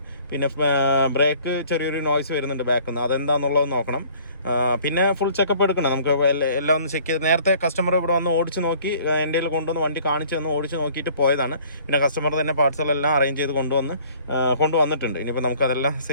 പിന്നെ ബ്രേക്ക് ചെറിയൊരു നോയ്സ് വരുന്നുണ്ട് ബാക്കിൽ നിന്ന്, അതെന്താണെന്നുള്ളത് നോക്കണം. പിന്നെ ഫുൾ ചെക്കപ്പ് എടുക്കണം. നമുക്ക് എല്ലാം ഒന്ന് ചെക്ക് ചെയ്ത്, നേരത്തെ കസ്റ്റമർ ഇവിടെ വന്ന് ഓടിച്ച് നോക്കി എൻ്റെ കയ്യിൽ കൊണ്ടുവന്ന് വണ്ടി കാണിച്ച് തന്ന് ഓടിച്ച് നോക്കിയിട്ട് പോയതാണ്. പിന്നെ കസ്റ്റമർ തന്നെ പാർട്സുകളെല്ലാം അറേഞ്ച് ചെയ്ത് കൊണ്ടുവന്നിട്ടുണ്ട്. ഇനിയിപ്പോൾ നമുക്കതെല്ലാം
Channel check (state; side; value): inverted; both; correlation -0.54